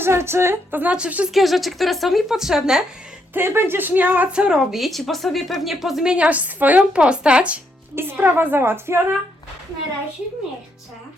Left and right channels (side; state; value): both; normal; correlation 0.76